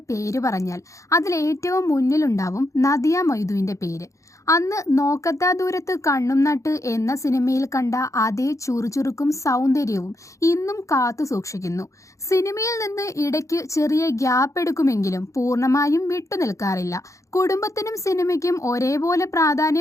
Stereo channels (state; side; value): late; right; 0.15 ms